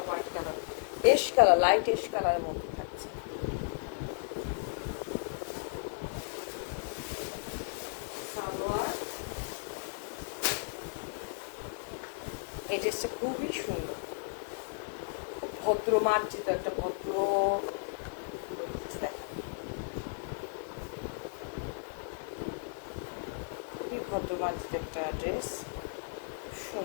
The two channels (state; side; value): silent; right; digital silence